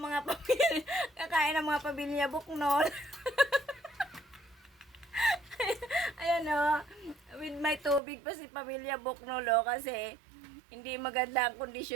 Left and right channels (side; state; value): left; drops out; at 8.0 s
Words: mga pamilya Buknol. Ayan o, with my tubig pa si pamilya Buknol o, kasi hindi maganda ang